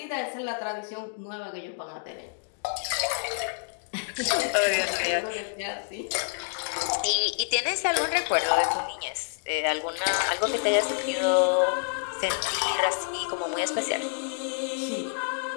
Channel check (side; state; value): right; silent; digital silence